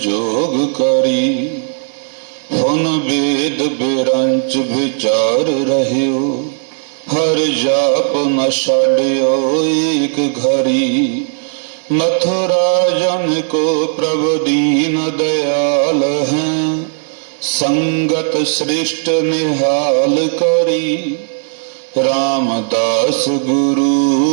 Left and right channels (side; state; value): left; silent; digital silence